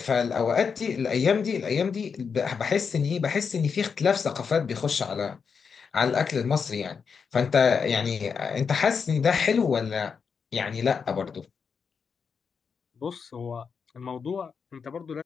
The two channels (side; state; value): right; quieter; 6.0 dB